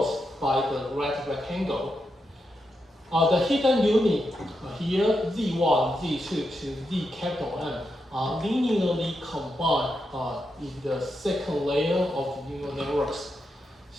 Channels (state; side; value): normal; both; correlation 0.85